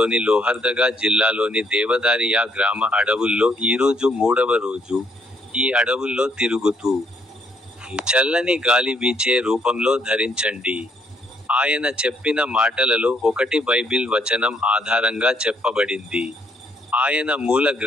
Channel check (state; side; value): normal; both; correlation 0.70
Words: లోహర్దగా జిల్లాలోని దేవదారియా గ్రామ అడవుల్లో ఈరోజు 3వ రోజు. ఈ అడవుల్లో తిరుగుతూ చల్లని గాలి వీచే రూపంలో ధరించండి. ఆయన చెప్పిన మాటలలో ఒకటి బైబిల్ వచనం ఆధారంగా చెప్పబడింది. ఆయన మూల